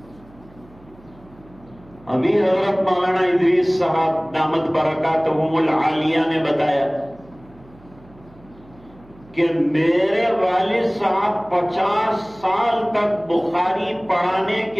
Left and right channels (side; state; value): right; noise; hum, 25 dB below the sound